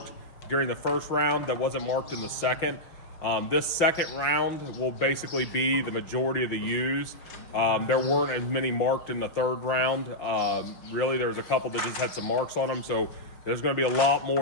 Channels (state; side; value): late; right; 5.8 ms